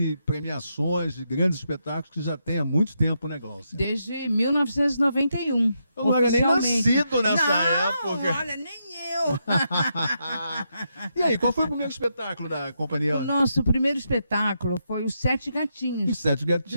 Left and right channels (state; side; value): inverted; both; correlation -0.82